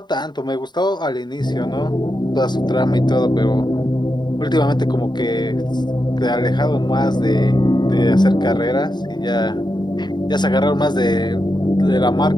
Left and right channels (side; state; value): right; late; 0.21 ms